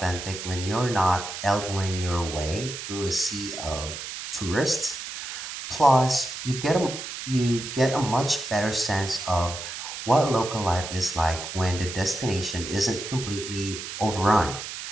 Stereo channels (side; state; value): right; noise; hiss, 8 dB below the sound